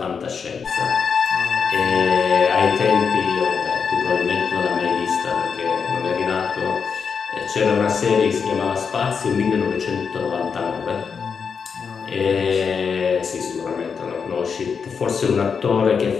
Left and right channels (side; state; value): right; quieter; 6.1 dB